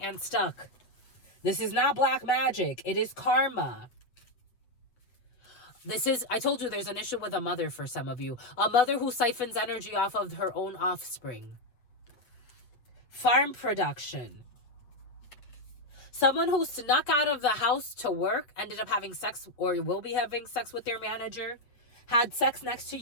stuck. This is not black magic. It is karma. I told you there's an issue with a mother for some of you. A mother who siphons energy off of her own offspring. Farm production. Someone who snuck out of the house to work, ended up having sex or will be having sex with their manager. Had sex next to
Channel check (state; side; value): late; right; 7.9 ms